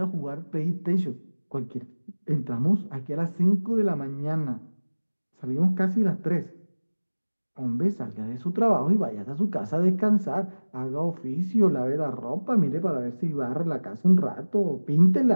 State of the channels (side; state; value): both; inverted; correlation -1.00